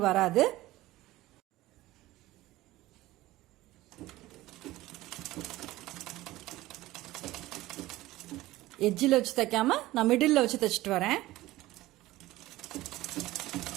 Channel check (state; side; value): quieter; left; 17.3 dB